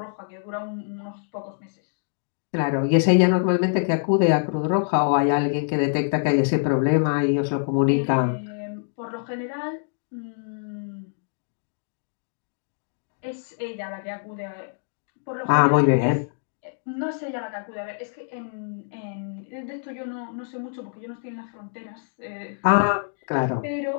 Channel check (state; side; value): silent; right; digital silence